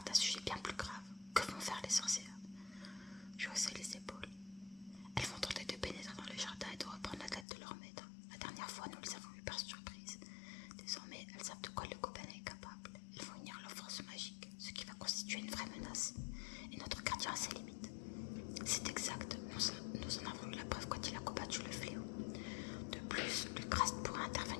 d'un sujet bien plus grave. Que vont faire les sorcières? Je haussai les épaules. Elles vont tenter de pénétrer dans le jardin et de reprendre la tête de leur maître. La dernière fois, nous les avons eues par surprise. Désormais, elles savent de quoi le gobelin est capable. Elles vont unir leur force magique, ce qui va constituer une vraie menace. Et notre gardien a ses limites. C'est exact, nous en avons eu la preuve quand il a combattu le fléau. De plus, Lucraste pourra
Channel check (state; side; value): drops out; right; at 7.5 s